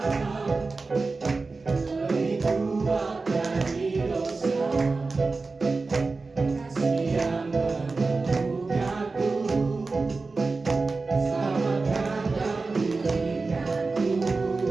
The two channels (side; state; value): left; quieter; 3.9 dB